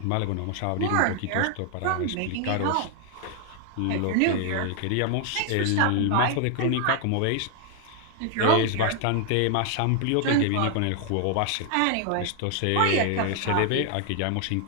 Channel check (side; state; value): both; different; correlation 0.00